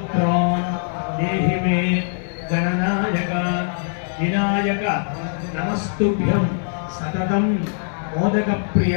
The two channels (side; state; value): right; silent; 64 dB below the other